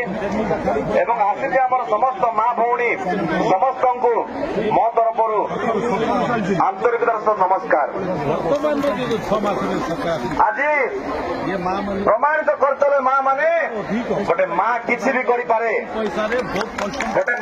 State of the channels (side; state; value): both; identical; correlation 1.00